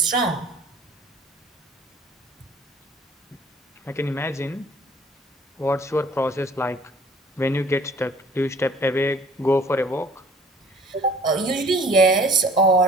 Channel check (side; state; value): both; normal; correlation 0.52